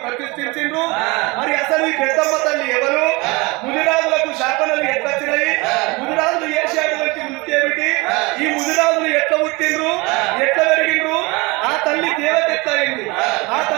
ప్రతిష్ఠించిండ్రు? మరి అసలు ఈ పెద్దమ్మ తల్లి ఎవరు? ముదిరాజులకు శాపనలు ఎట్లా వచ్చినాయి? ముదిరాజులు చేసేటువంటి వృత్తి ఏమిటి? ఈ ముదిరాజులు ఎట్లా పుట్టిండ్రు, ఎట్లా పెరిగిండ్రు? ఆ తల్లి దేవత ఎట్లా అయింది? ఆ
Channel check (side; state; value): left; quieter; 25.3 dB